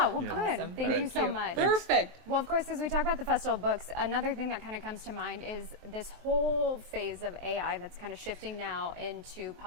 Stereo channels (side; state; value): left; late; 23 ms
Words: well, good. Awesome. Thank you Thank so you. much. Perfect. Well, of course, as we talk about the Festival of Books, another thing that kind of comes to mind is this whole phase of AI that's kind of shifting now into